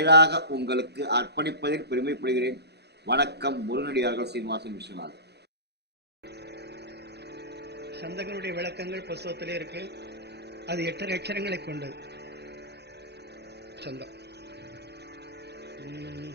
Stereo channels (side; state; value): left; late; 0.48 ms